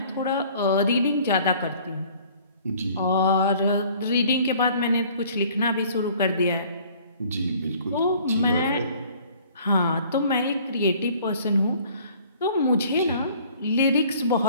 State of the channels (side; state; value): both; inverted; correlation -0.54